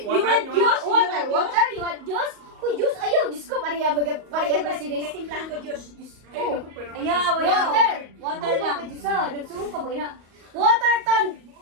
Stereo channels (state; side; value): late; left; 38 ms